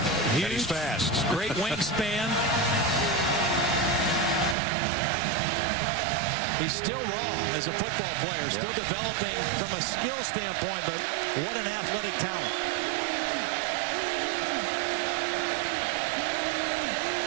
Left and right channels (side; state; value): left; drops out; at 4.5 s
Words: And he's fast. Great wingspan. He's still raw as a football player, still developing from a skill standpoint, but what an athletic talent.